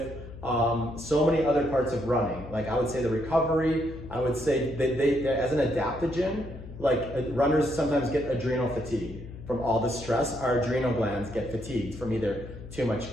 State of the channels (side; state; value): left; noise; hum, 13 dB below the sound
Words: so many other parts of running. Like I would say the recovery, I would say they as an adaptogen, like runners sometimes get adrenal fatigue from all the stress. Our adrenal glands get fatigued from either too much